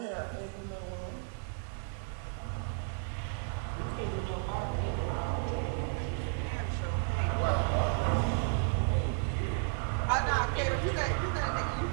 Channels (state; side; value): silent; left; 56 dB below the other